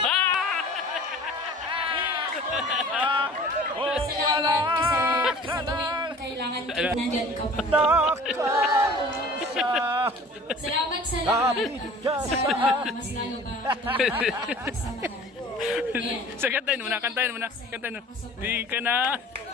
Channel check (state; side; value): normal; both; correlation 0.45